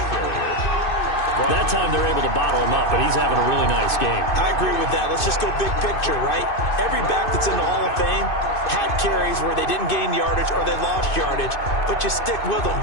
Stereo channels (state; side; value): late; right; 2.6 ms